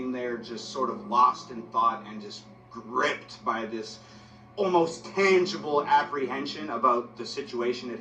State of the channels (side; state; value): both; identical; correlation 1.00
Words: there just sort of lost in thought and just gripped by this almost tangible apprehension about the situation at